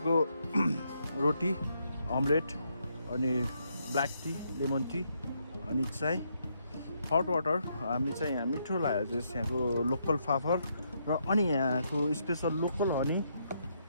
रोटी अमलेट अनि ब्ल्याक टी लेमन टी अनि चाय हट वाटर हामी चाहिँ यहाँ मिठो लाग्यो चाहिँ यहाँको लोकल फाफर र अनि यहाँको स्पेसल लोकल हनी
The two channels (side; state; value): both; inverted; correlation -0.76